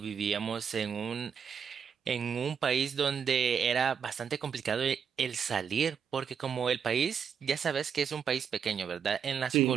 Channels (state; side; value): quieter; left; 7.1 dB